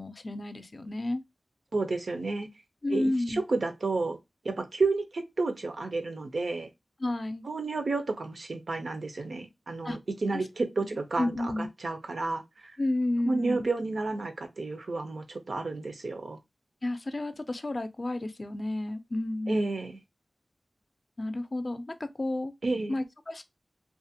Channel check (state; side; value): normal; both; correlation 0.95